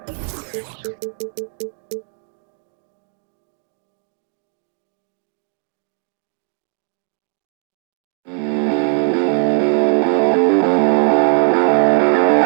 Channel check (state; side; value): silent; left; digital silence